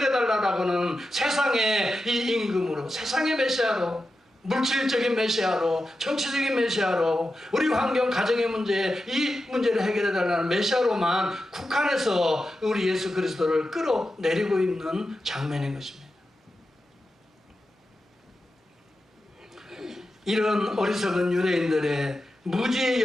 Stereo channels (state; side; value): normal; both; correlation 0.91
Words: 세상의 이 임금으로, 세상의 메시아로, 물질적인 메시아로, 정치적인 메시아로, 우리 환경, 가정의 문제, 이 문제를 해결해달라는 메시아로만 국한해서 우리 예수 그리스도를 끌어내리고 있는 장면인 것입니다. 이런 어리석은 유대인들의 무지의